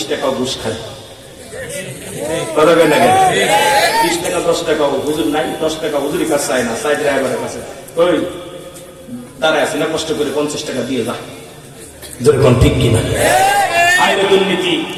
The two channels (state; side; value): identical; both; correlation 1.00